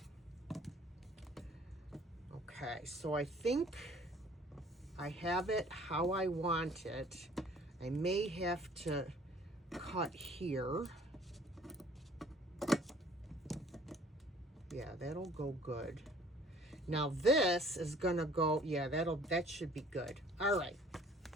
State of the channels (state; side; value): normal; both; correlation 0.54